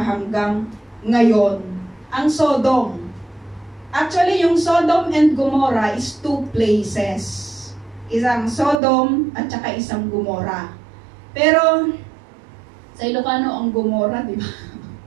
ngayon. Ang Sodom. Actually, yung Sodom and Gomorrah is two places. Isang Sodom at saka isang Gomorrah. Pero, sa Ilocano, ang Gomorrah, di ba?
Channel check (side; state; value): left; drops out; at 8.8 s